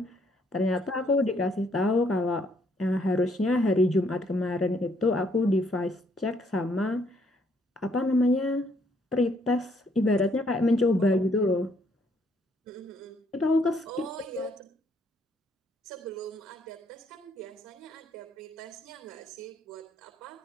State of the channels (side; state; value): both; normal; correlation 0.69